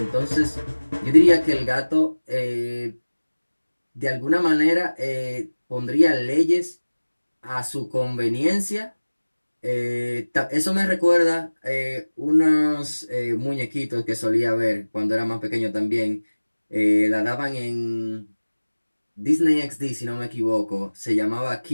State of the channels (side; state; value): both; inverted; correlation -1.00